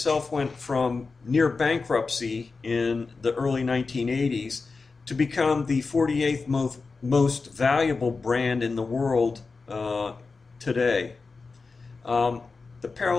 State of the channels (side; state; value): right; quieter; 4.3 dB